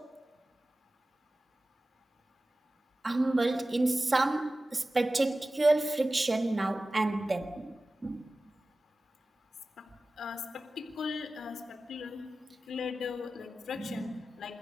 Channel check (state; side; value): normal; both; correlation 0.96